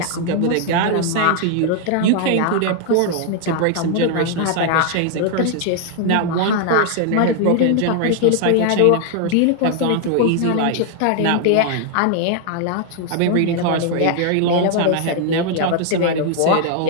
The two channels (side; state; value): both; different; correlation 0.00